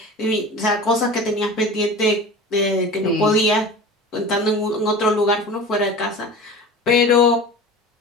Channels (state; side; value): normal; both; correlation 0.35